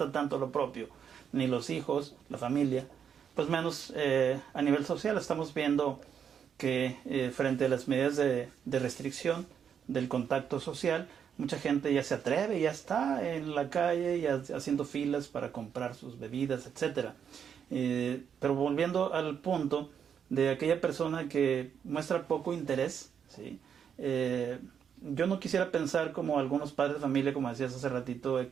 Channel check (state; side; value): quieter; left; 7.8 dB